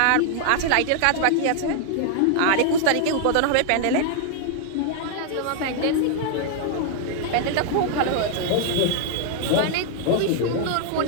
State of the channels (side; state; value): both; different; correlation 0.00